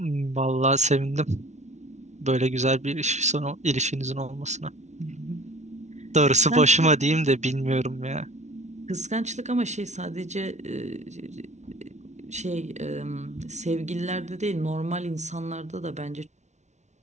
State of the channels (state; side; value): late; left; 0.33 ms